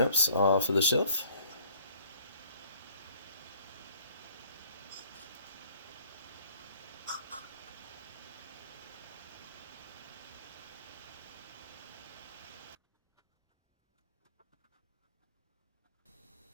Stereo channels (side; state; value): both; inverted; correlation -0.57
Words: off of the shelf.